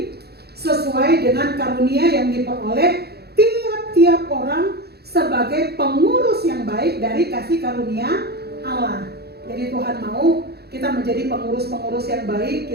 sesuai dengan karunia yang diperoleh tiap-tiap orang sebagai pengurus yang baik dari kasih karunia Allah. Jadi Tuhan mau kita menjadi pengurus-pengurus yang baik,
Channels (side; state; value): left; late; 0.47 ms